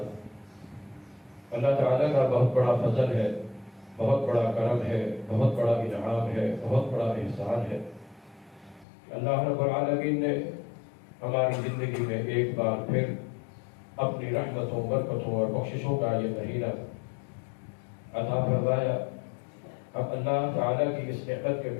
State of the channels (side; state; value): right; drops out; at 8.8 s